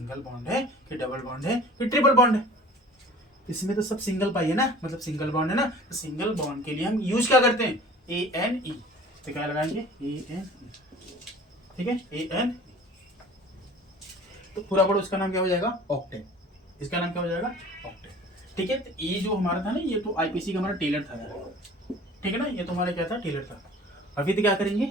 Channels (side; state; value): both; normal; correlation 0.45